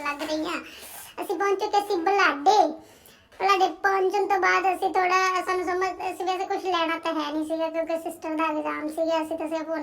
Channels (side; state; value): both; identical; correlation 1.00